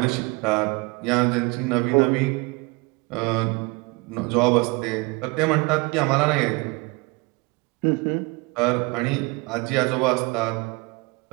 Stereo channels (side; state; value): left; quieter; 27.3 dB